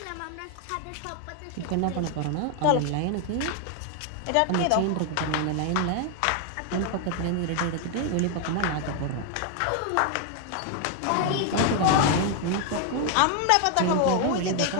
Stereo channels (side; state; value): both; different; correlation 0.00